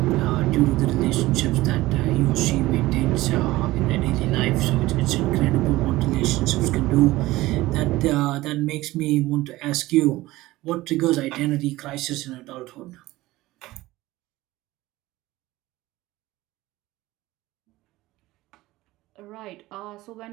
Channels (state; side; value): quieter; left; 18.1 dB